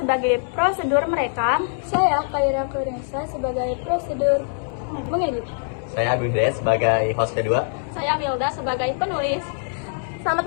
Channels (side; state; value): right; silent; 63 dB below the other